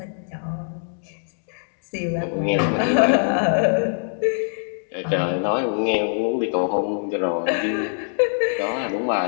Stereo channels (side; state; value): right; silent; digital silence